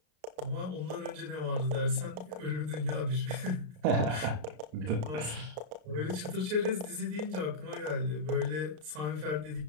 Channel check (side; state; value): left; late; 33 ms